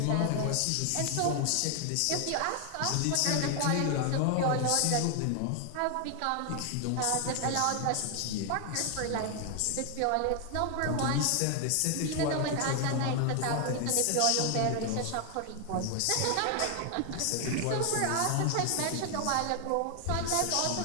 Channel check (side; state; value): both; different; correlation 0.00